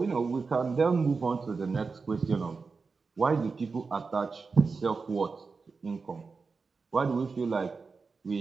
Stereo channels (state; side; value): quieter; left; 4.6 dB